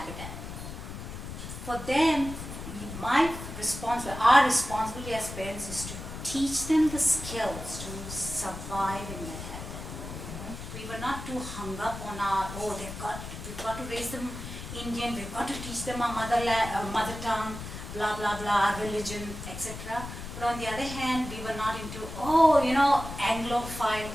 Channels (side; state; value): left; noise; rumble, 9 dB below the sound